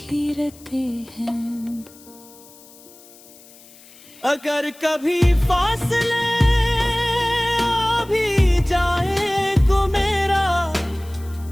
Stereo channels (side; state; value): left; noise; hiss, 23 dB below the sound